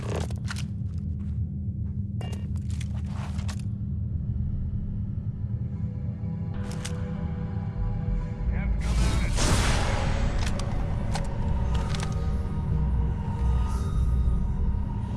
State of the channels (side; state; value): both; identical; correlation 1.00